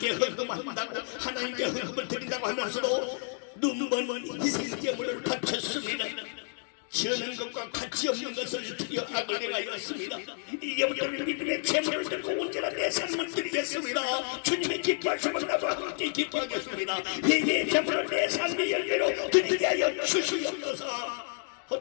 헌금한다고 하나님께 헌금을 드린다고 하면서도 눈먼 희생제물을 바쳤습니다. 지어낸 것과 가치 없는 것을 드려 악을 행하였습니다. 이제부터는 믿음의 제물을 들고 언제나 내 삶을 드리겠습니다. 주님의 기뻐하시면 나도 함께 기뻐하겠습니다. 회개의 제물을 내 삶의 열매로 드리게 하여 주시옵소서.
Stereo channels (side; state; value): right; silent; 58 dB below the other